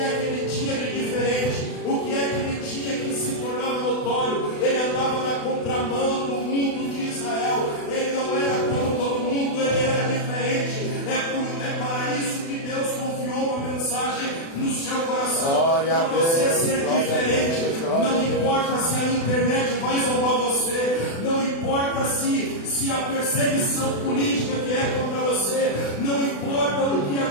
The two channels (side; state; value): right; late; 36 ms